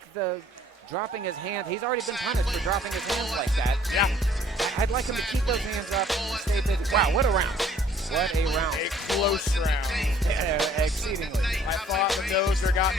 the dropping his hand. He's already been punished for dropping his hands like that. Yeah. I'd like him to keep those hands up and stay busy. Wow, what a round. What a round. A close round. Exceedingly. I thought the Dozer got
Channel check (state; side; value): normal; both; correlation 0.58